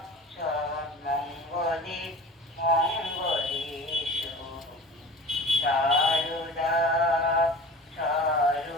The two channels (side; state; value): both; normal; correlation 0.39